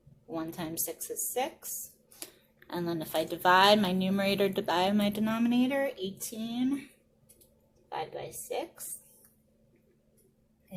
1 times 6 is 6. And then if I divide my numerator by my denominator, 18 divided by 6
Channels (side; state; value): both; identical; correlation 1.00